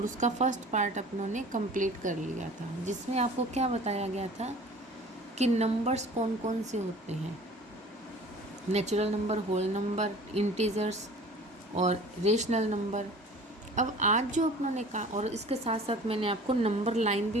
उसका फर्स्ट पार्ट अपनों ने कंप्लीट कर लिया था, जिसमें आपको क्या बताया गया था कि नंबर्स कौन कौन से होते हैं। Natural number, whole number, integers और रेशनल नंबर। अब आज जो अपनों ने कहा, और इसके साथ साथ मैंने आपको नंबर लाइन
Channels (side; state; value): both; normal; correlation 0.45